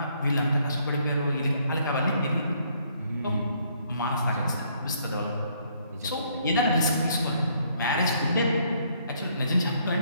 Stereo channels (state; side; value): inverted; both; correlation -0.67